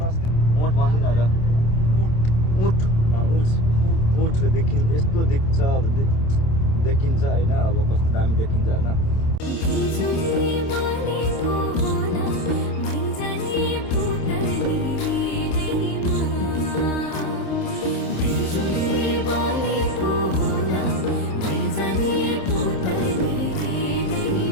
अस्ति ऊँट भन्दिनँ अब ऊँट ऊँट देखिन्छ यस्तो देख्छ देखिन्छ होइन अब कस्तो दामी देखिन्छ होइन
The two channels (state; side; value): late; right; 27 ms